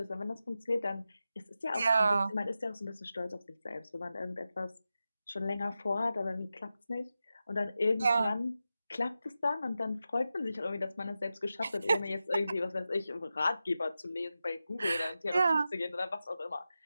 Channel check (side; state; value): both; inverted; correlation -0.91